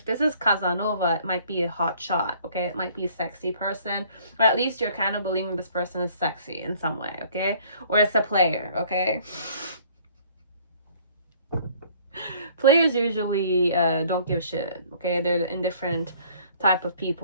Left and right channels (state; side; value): inverted; both; correlation -0.56